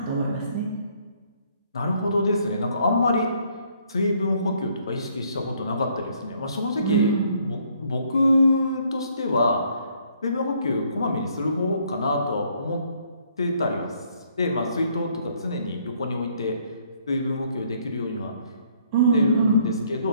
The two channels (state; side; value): inverted; both; correlation -0.66